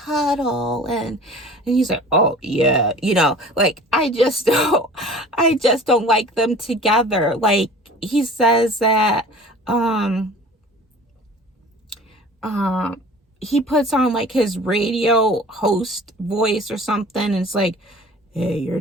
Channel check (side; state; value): both; normal; correlation 0.44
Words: and he's like, "Oh yeah," like, I just don't like them together. Like, he says that he puts on like his radio host voice or something, and it's like, "Hey,